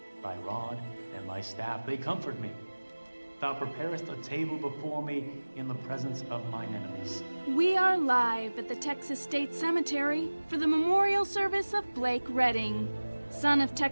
Thy rod and thy staff, they comfort me. Thou preparest a table before me in the presence of mine enemies. We are live at the Texas State Cemetery for the memorial service of Blake Redding, son of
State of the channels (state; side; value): inverted; both; correlation -1.00